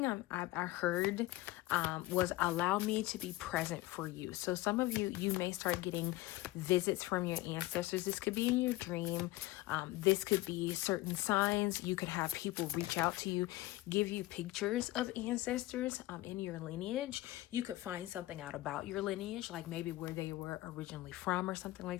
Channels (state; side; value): quieter; right; 18.1 dB